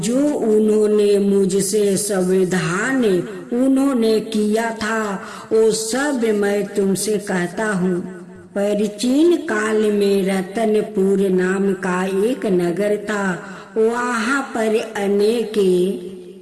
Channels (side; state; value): both; identical; correlation 1.00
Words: जो उन्होंने मुझसे संविधान उन्होंने किया था वो सब मैं तुमसे कहता हूँ। प्राचीन काल में रतनपुर नाम का एक नगर था। वहाँ पर अनेक